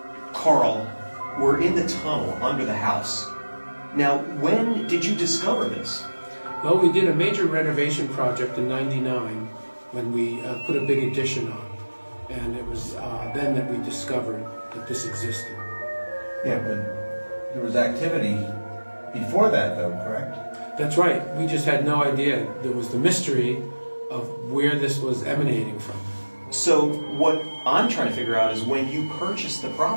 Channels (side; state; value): both; inverted; correlation -1.00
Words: Carl, we're in the tunnel under the house. Now, when did you discover this? Well, we did a major renovation project in '99 when we put a big addition on. And it was then that we discovered that this existed. Yeah, but there was activity before that, though, correct? That's right. We just had no idea. There was the mystery of where this was emanating from. So what I'm trying to figure out is when you purchased the